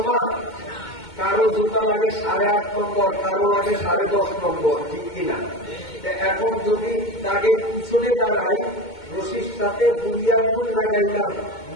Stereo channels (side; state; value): right; late; 2.2 ms